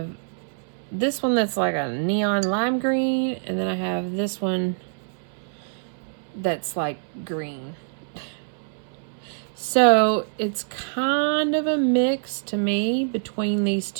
this one that's like a neon lime green. And then I have this one that's like green. So it's kind of a mix to me between these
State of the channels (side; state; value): left; silent; 62 dB below the other